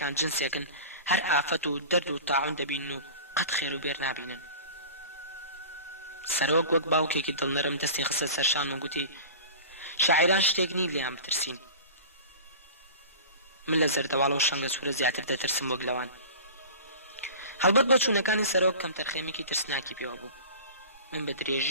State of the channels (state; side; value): inverted; both; correlation -0.37